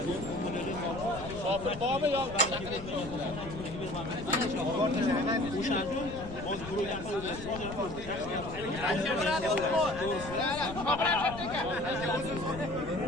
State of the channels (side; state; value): left; noise; rumble, 12 dB below the sound